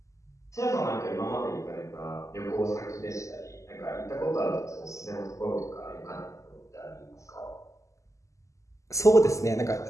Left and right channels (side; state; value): right; late; 0.15 ms